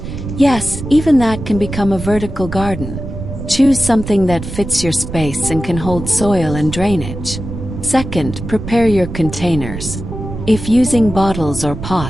Yes, even that can become a vertical garden. Choose something that fits your space and can hold soil and drainage. Second, prepare your containers. If using bottles or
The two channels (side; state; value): right; noise; rumble, 8 dB below the sound